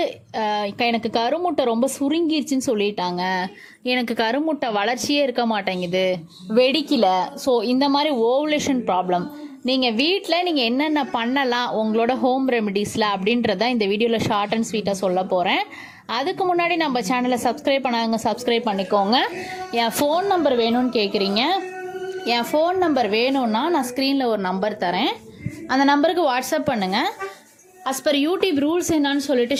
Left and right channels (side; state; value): both; identical; correlation 1.00